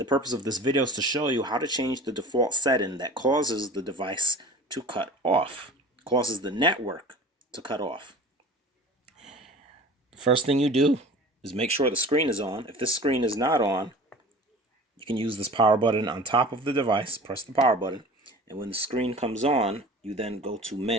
purpose of this video is to show you how to change the default setting that causes the device to cut off, causes the network to cut off. The first thing you do is make sure the screen is on. If this screen is not on, you can use this power button on top of the device, press the power button, and when the screen comes on, you then go to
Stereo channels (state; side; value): normal; both; correlation 0.40